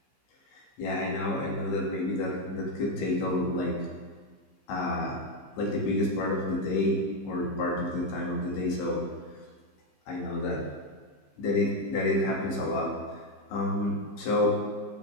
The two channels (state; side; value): late; right; 15 ms